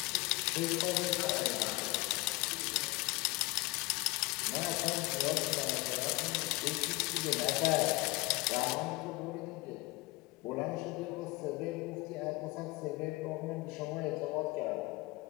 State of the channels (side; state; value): right; quieter; 23.4 dB